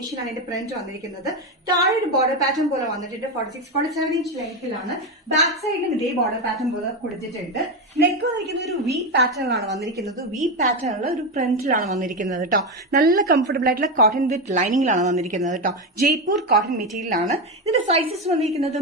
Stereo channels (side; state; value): both; normal; correlation 0.13